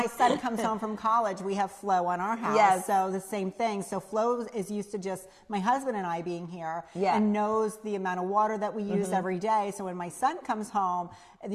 son comes home from college, we have Flow on our house. Yes. So the same thing. So Flow is used to just my husband and I being here Yeah. and knows the amount of water that we use every day. So when my son comes home,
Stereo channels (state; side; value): identical; both; correlation 1.00